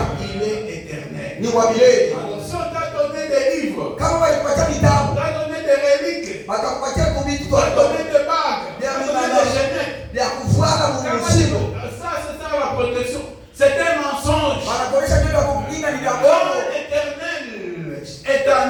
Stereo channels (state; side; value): identical; both; correlation 1.00